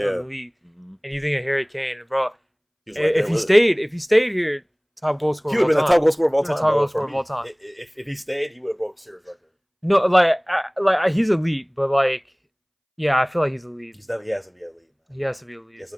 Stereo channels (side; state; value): both; identical; correlation 1.00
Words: league. Mm-hmm. And you think of Harry Kane, bro. If he stayed here, top goal scorer. He would have been the top goal scorer of all time. Top goal scorer of all time. If he stayed, he would have broke Series record. No, like he's elite, but like, yeah, I feel like he's elite. He has to be elite. Man. He has to be elite. He has to